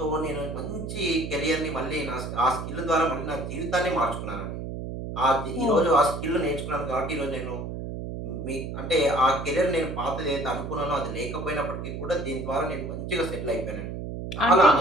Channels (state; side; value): noise; right; hum, 6 dB below the sound